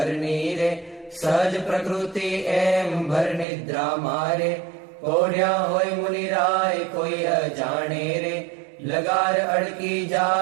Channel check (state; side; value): drops out; left; at 3.5 s